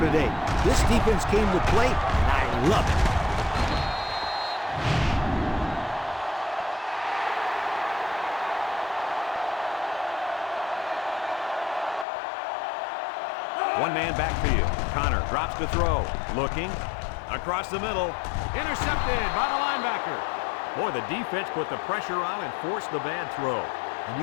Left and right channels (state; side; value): drops out; right; at 12.1 s